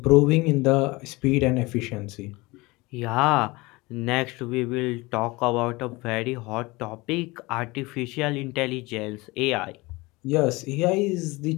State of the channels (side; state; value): right; quieter; 23.0 dB